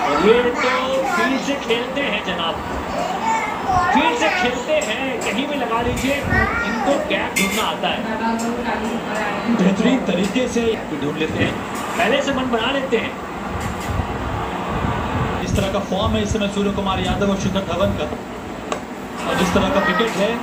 और ये तो फील्ड से खेलते हैं जनाब, फील्ड से खेलते हैं, कहीं भी लगा लीजिए, इनको गैप ढूंढना आता है, बेहतरीन तरीके से ढूंढ लेते हैं, पहले से मन बना लेते हैं। इस तरह का फॉर्म है इस समय सूर्य कुमार यादव और शिखर धवन का, और जिस तरह का विकेट है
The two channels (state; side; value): identical; both; correlation 1.00